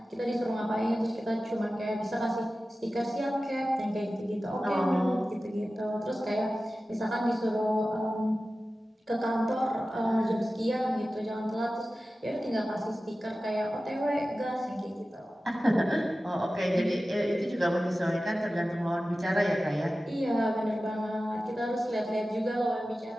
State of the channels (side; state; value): both; normal; correlation 0.95